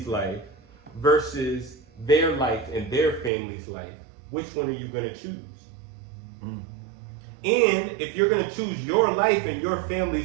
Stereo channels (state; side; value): drops out; left; at 3.3 s